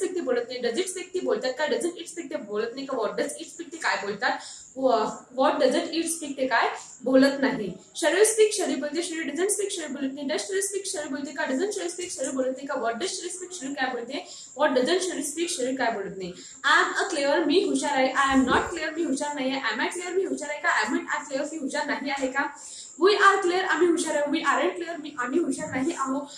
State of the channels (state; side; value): identical; both; correlation 1.00